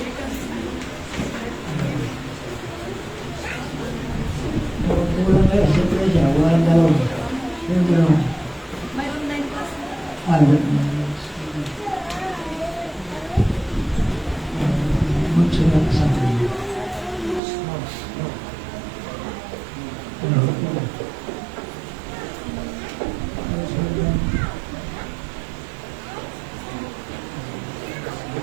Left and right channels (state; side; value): drops out; left; at 17.4 s